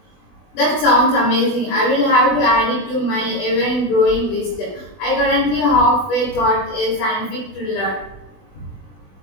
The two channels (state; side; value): late; right; 20 ms